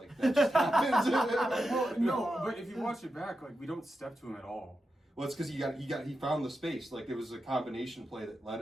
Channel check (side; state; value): both; normal; correlation 0.88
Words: that just happens. Well, no, but if you watch it back, like we don't step to him at all. Well, it's because he found the space. Like it was a combination play that led